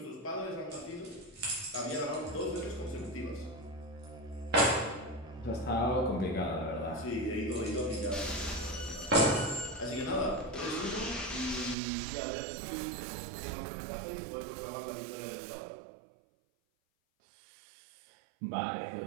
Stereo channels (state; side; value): drops out; left; at 11.8 s